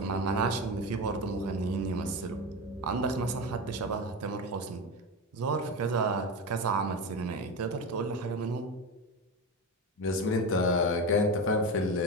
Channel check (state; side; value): normal; both; correlation 0.21